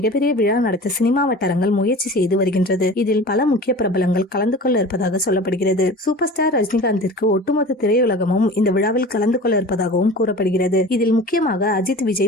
விழா நடத்த சினிமா வட்டாரங்கள் முயற்சி செய்து வருகின்றது. இதில் பல முக்கிய பிரபலங்கள் கலந்து கொள்ள இருப்பதாக சொல்லப்படுகிறது. சூப்பர் ஸ்டார் ரஜினிகாந்திற்கு ஒட்டுமொத்த திரையுலகமும் இந்த விழாவில் கலந்து கொள்ள இருப்பதாகவும் கூறப்படுகிறது. இதில் முக்கியமாக அஜித்,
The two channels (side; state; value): both; normal; correlation 0.38